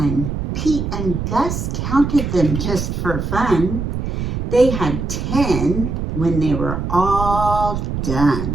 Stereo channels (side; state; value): right; noise; rumble, 3 dB below the sound